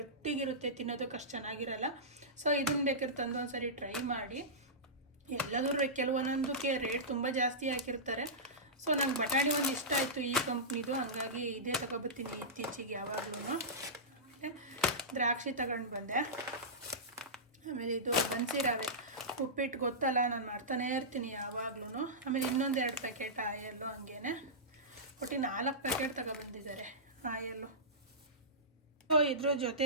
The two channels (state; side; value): normal; both; correlation -0.16